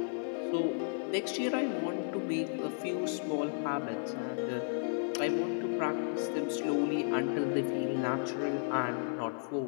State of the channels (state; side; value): silent; right; 55 dB below the other